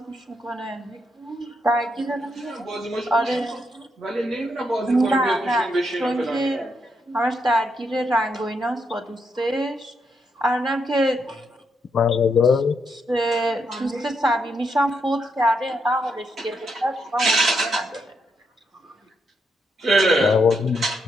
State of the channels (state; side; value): normal; both; correlation 0.79